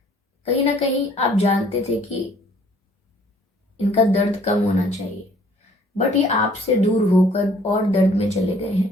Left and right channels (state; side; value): normal; both; correlation 0.57